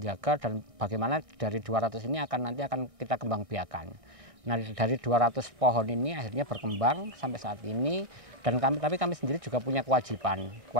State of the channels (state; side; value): late; left; 1.6 ms